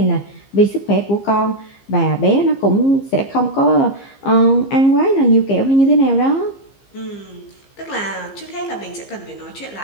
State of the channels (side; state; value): right; late; 15 ms